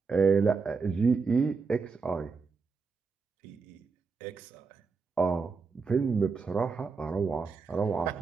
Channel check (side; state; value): left; quieter; 4.9 dB